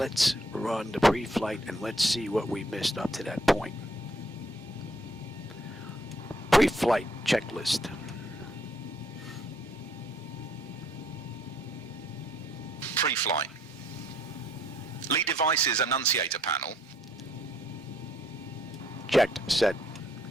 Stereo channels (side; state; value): both; normal; correlation 0.67